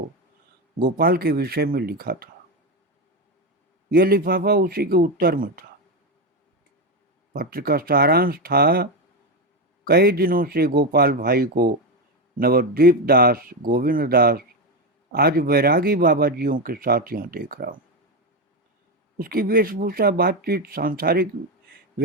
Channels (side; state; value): both; normal; correlation 0.12